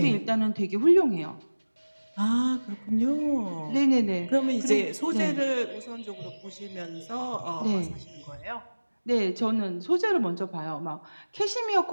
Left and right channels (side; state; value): both; inverted; correlation -1.00